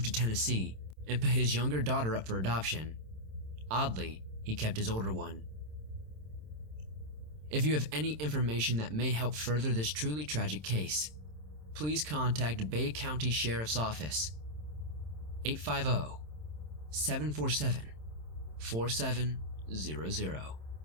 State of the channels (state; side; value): late; left; 27 ms